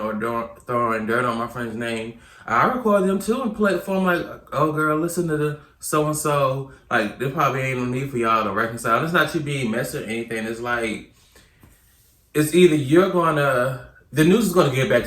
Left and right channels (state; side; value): identical; both; correlation 1.00